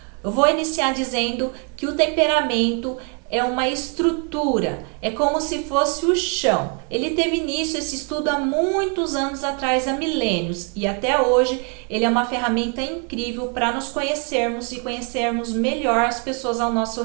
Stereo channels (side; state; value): left; quieter; 38.2 dB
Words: Eu vou iniciar dizendo que o temperamento é uma estrutura, é como se fosse o chão. Ele teve início esse estudo há muitos anos atrás, há milênios, e até hoje ele é uma ferramenta incrível para nos conhecermos e conhecermos melhor as pessoas ao nosso